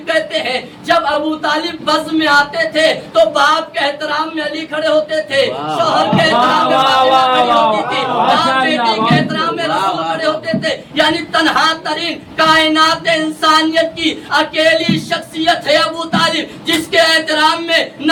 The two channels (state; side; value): identical; both; correlation 1.00